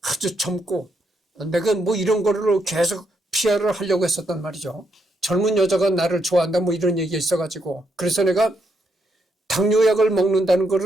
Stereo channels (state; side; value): normal; both; correlation 0.77